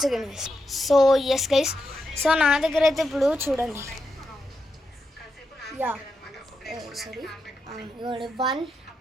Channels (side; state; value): both; normal; correlation 0.86